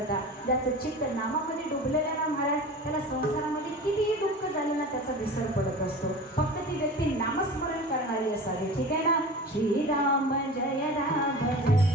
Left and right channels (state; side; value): normal; both; correlation 0.35